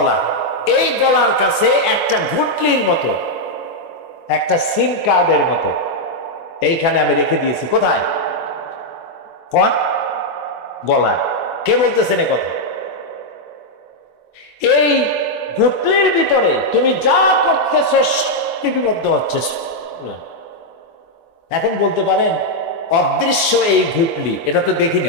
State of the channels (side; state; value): right; late; 24 ms